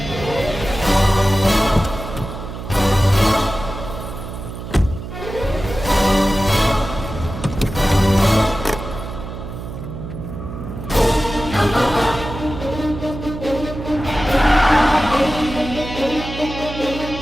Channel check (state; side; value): noise; right; hum, 9 dB below the sound